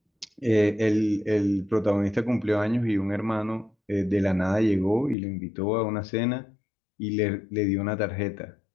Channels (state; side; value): drops out; right; at 5.2 s